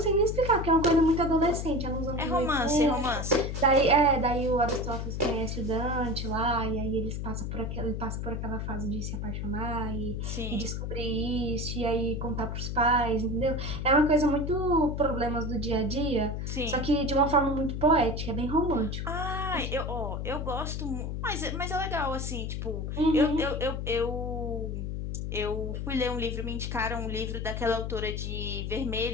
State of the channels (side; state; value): left; noise; hum, 3 dB below the sound